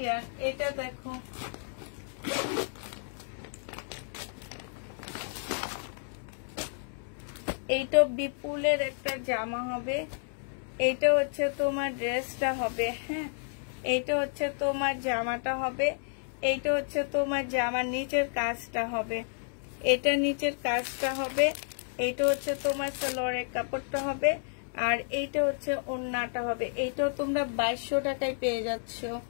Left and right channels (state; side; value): silent; right; 57 dB below the other